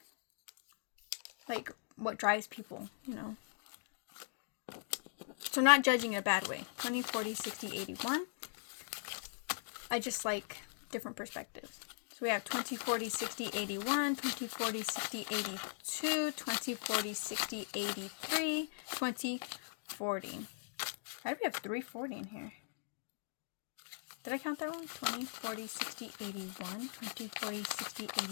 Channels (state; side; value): silent; right; digital silence